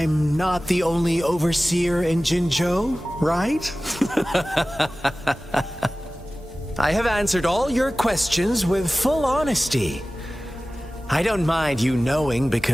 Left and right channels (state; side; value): normal; both; correlation 0.97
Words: not the only overseer in Jinzhou, right? I have answered all your questions with full honesty. I don't mind you knowing